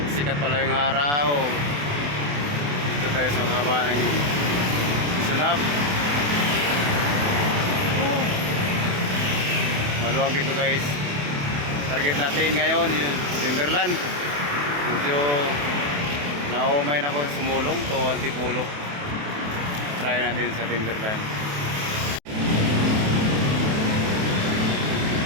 sikat pala yung araw. Dito tayo sa baba ng Sunab. Maluwag dito guys. Target natin ngayon yung Timberland. Medyo naumay na ako sa sumulong to Antipulo. Try natin sa Timberland.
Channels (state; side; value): late; left; 28 ms